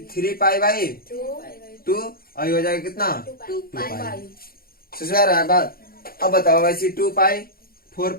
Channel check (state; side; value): late; right; 0.43 ms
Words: पाई बाई 2 और ये हो जाएगा कितना 2 पाई। पाई। समझ आ रहा है बात? अब बताओ वैसे 2 पाई 4